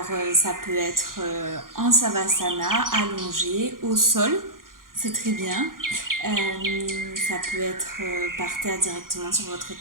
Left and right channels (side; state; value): left; late; 0.91 ms